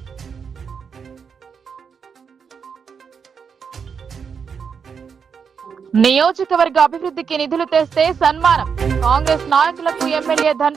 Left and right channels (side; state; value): left; quieter; 6.4 dB